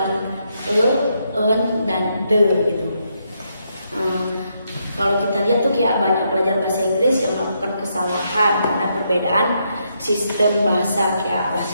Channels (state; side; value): inverted; both; correlation -0.78